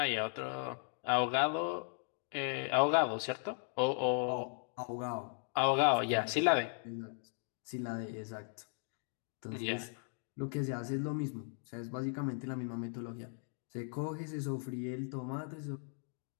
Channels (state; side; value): silent; right; 53 dB below the other